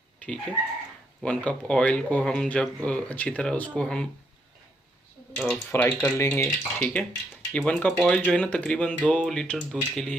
ठीक है, 1 कप ऑयल को हम जब अच्छी तरह उसको हम फ्राई कर लेंगे। ठीक है, ये 1 कप ऑयल जो है ना तकरीबन 2 लीटर दूध के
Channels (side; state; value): both; normal; correlation 0.76